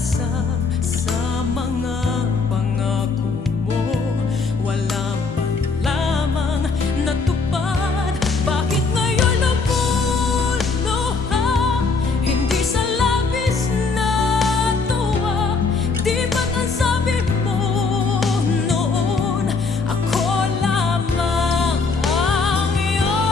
Sa mga pangako mo wala man lamang natupad. Bakit ngayon lumuluha, hindi sa labis na tuwa? Di ba't ang sabi mo noon, ako lamang ang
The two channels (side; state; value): right; quieter; 4.3 dB